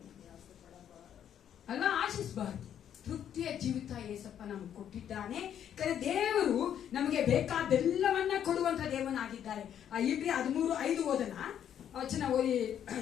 ಅಲ್ವಾ? ಆಶಿಸಬಾರ್ದು. ತೃಪ್ತಿಯ ಜೀವಿತ ಏಸಪ್ಪ ನಮ್ಗೆ ಕೊಟ್ಟಿದ್ದಾನೆ. ದೇವರು ನಮಗೆ ಬೇಕಾದೆಲ್ಲವನ್ನ ಕೊಡುವಂತ ದೇವನಾಗಿದ್ದಾರೆ. ಇಬ್ರಿ 13:5 ಓದನ ವಚನ ಓದಿ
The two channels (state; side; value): quieter; right; 9.6 dB